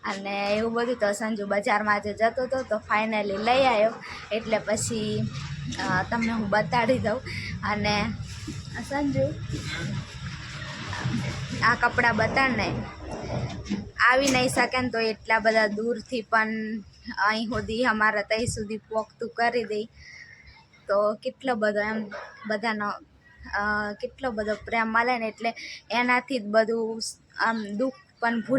અને એવું બધું. તો સંજુ બજારમાં જે જતો હતો તો ફાઇનલી લઈ આવ્યો એટલે પછી તમને હું બતાડી દઉં. અને સંજુ આ કપડાં બતાડને આવી નહીં શકે ને તો એટલા બધા દૂરથી પણ અહીં સુધી અમારા ત્યાં સુધી પોખતું કરી દઈ તો કેટલો બધો એમ બધાનો કેટલો બધો પ્રેમ મળે ને એટલે એનાથી જ બધું આમ દુઃખ પણ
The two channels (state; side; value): identical; both; correlation 1.00